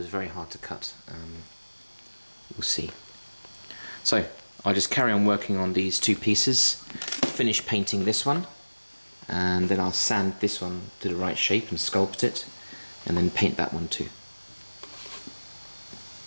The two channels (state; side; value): inverted; both; correlation -1.00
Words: very hard to cut. We'll see. So I'll just carry on working on these two pieces, finish painting this one, and then I'll sand this one to the right shape and sculpt it, and then paint that one too.